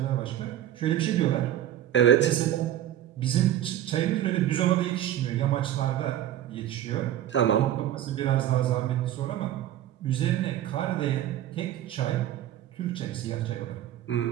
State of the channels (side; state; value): left; quieter; 12.0 dB